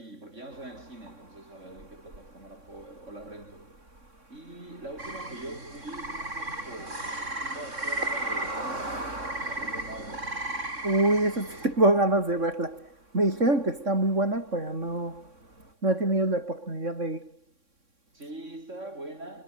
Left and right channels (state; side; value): late; left; 3.6 ms